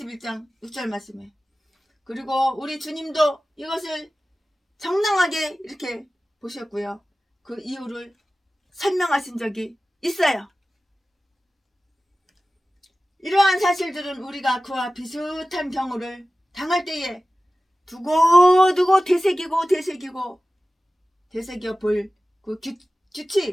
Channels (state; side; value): normal; both; correlation 0.96